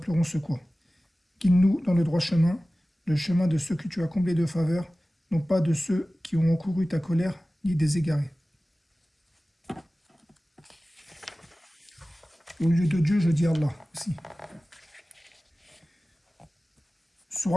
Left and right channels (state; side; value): normal; both; correlation 0.97